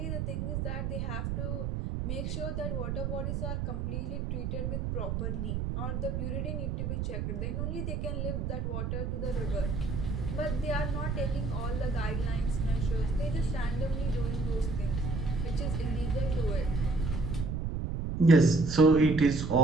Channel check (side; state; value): right; noise; rumble, 2 dB below the sound